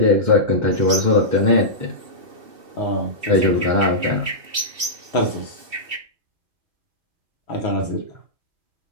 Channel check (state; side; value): late; left; 2.7 ms